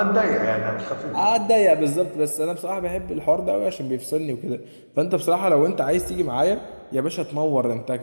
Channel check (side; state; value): both; inverted; correlation -1.00